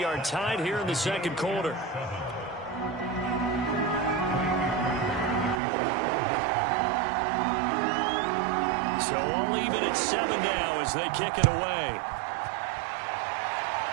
are tied here in the 2nd quarter. So all even at 7 now as they kick it away.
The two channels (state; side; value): drops out; left; at 5.6 s